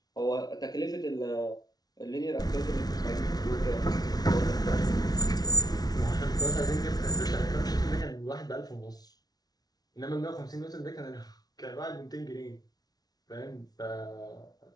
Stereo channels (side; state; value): right; late; 0.19 ms